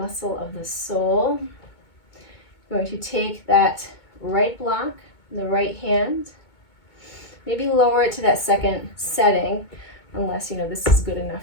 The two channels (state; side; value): late; right; 2.2 ms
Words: of the soul. You're going to take that right block, the right hand, maybe lower it to that second setting, unless you know this is good